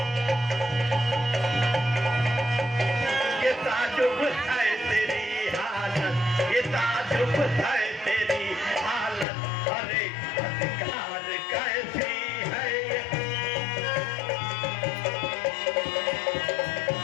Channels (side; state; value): right; drops out; at 9.2 s